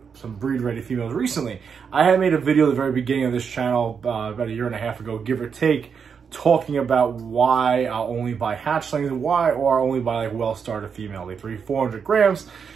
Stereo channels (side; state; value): left; quieter; 6.5 dB